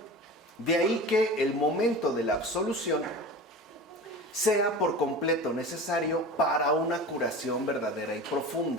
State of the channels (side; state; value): both; normal; correlation 0.34